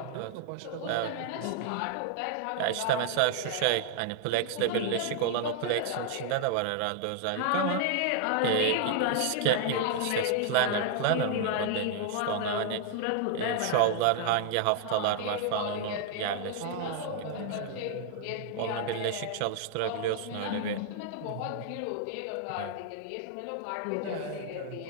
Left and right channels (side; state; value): both; different; correlation 0.00